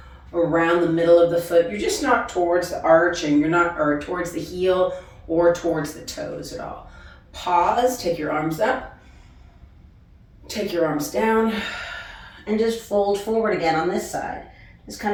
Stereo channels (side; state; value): both; identical; correlation 1.00